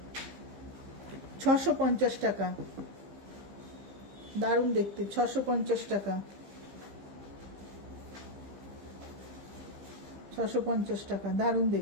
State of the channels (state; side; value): late; left; 15 ms